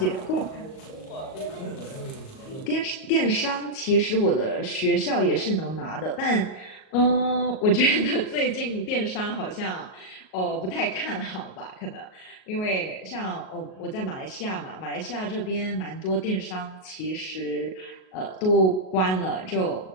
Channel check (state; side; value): late; right; 38 ms